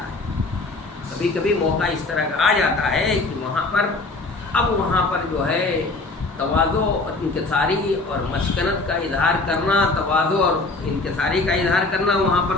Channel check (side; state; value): right; quieter; 3.3 dB